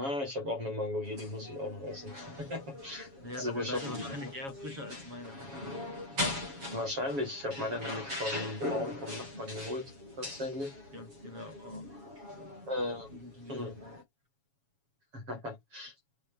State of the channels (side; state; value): left; late; 7.2 ms